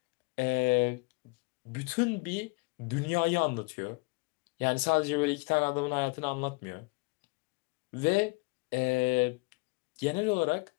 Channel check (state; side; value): quieter; right; 28.9 dB